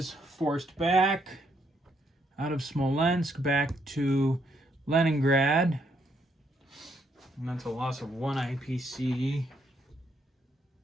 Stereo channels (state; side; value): normal; both; correlation 0.74